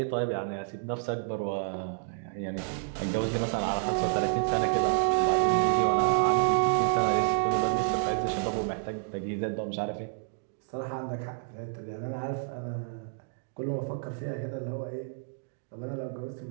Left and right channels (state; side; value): silent; left; digital silence